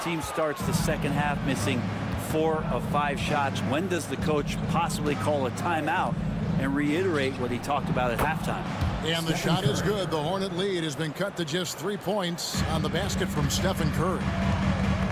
Team starts the second half missing 4 of 5 shots. When does the coach possibly call a timeout and reiterate what he talked about at halftime? And the shot is good. The Hornet lead has been cut to just 3 points on the basket from Stephen Curry.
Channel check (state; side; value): identical; both; correlation 1.00